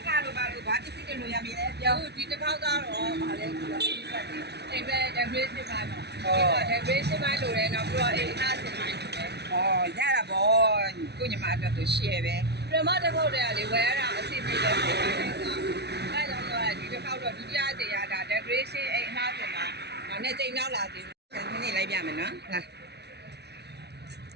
ကားလို့ပါလို့ဘာပစ္စည်းတွေလို့ရပြီလဲပြောဒီတစ်ခေါက်ကတော့ဗာလဲဆိုတော့ဒီဆက်တယ်အိမ်ပဲ decoration ပါတော့ဒီက decoration ပါလို့လည်းတော့ပြီးတော့အိမ်အားစင်ပါရတာပေါ့ကိုညီမအတွက်ဆို share ပဲပြမတစ်ခေါက်တည်းကလေဝယ်ရတာအစီအစဉ်ပဲဖြစ်နေတာအဲကြောင့်တော့ဒီတစ်ခေါက်တော့ဒုတိယကြိမ်ရတာ decoration အိမ်အားစင်ပါဒါနဲ့ကြိမ်နောက်လာသေးတယ်ခဏနေလိုက်ပြမယ်နော်လာ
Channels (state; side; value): late; left; 0.49 ms